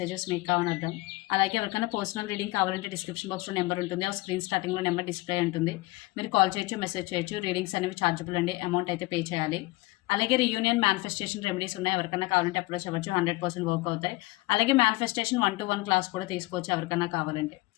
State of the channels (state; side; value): quieter; right; 21.4 dB